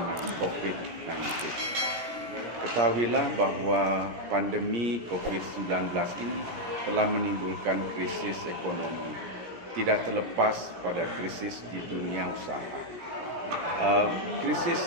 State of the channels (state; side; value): late; left; 17 ms